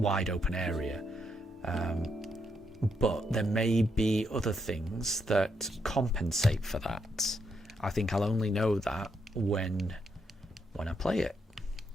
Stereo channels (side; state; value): both; normal; correlation 0.78